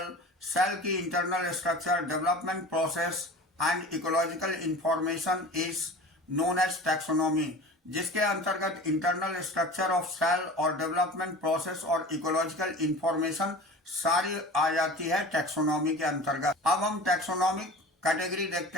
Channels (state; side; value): normal; both; correlation 0.38